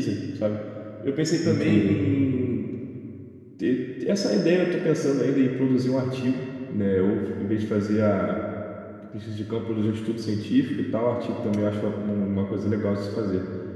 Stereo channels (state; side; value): identical; both; correlation 1.00